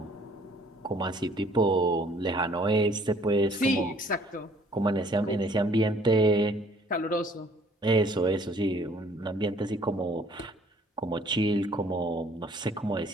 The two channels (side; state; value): both; normal; correlation 0.58